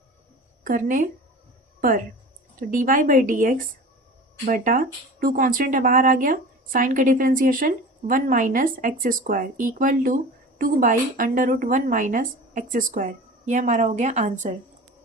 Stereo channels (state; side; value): normal; both; correlation 0.36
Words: पर तो dy बाई डी एक्स बटा 2 कॉन्स्टेंट है बाहर आ गया, साइन का differentiation 1 minus x square equal to 2 by under root 1 minus x square. यह हमारा हो गया आंसर।